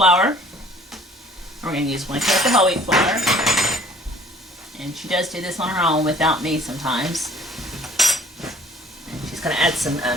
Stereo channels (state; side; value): normal; both; correlation 0.54